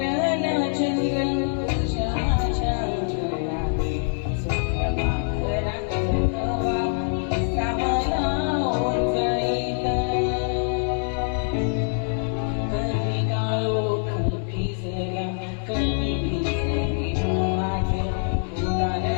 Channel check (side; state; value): right; silent; 62 dB below the other